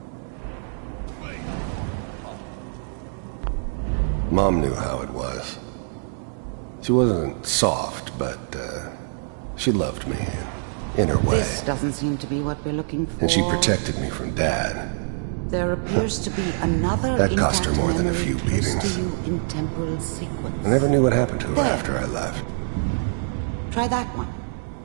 Mom knew how it was. She wasn't soft, but she loved me in her way. This doesn't seem to be what we're looking for. And she protected me from Dad. There appears to be another That cost her intact more than a memory few close beatings. to you in temporal sequence. I never knew what happened to her There. after I left. Try that one.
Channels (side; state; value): left; silent; digital silence